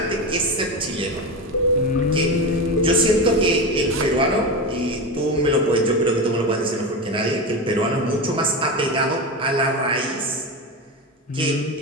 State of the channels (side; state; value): both; normal; correlation 0.21